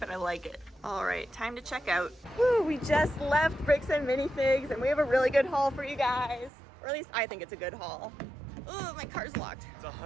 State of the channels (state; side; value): drops out; left; at 6.5 s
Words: I like it. All right, time to check out. Woo, we just left Bricks and Minifigs, and we have a really good haul for you guys. Or at least I think it's a good haul. Oh, my car's locked. It's